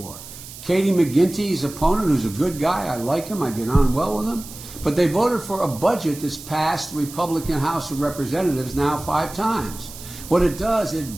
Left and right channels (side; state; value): right; noise; hiss, 15 dB below the sound